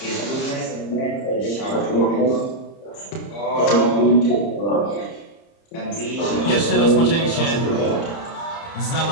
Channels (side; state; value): right; late; 30 ms